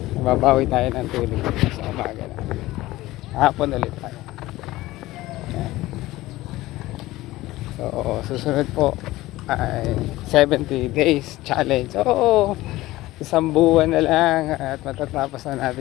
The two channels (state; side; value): quieter; right; 17.7 dB